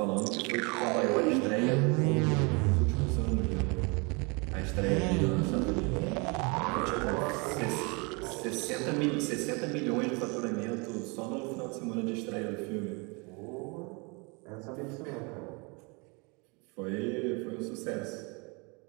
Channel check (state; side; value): quieter; left; 30.3 dB